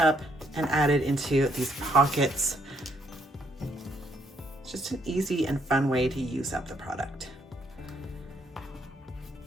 and added into these pockets? just an easy and fun way to use up the product.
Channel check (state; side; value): normal; both; correlation 0.71